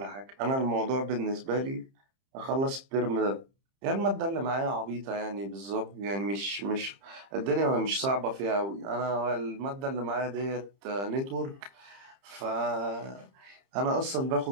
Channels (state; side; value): late; left; 30 ms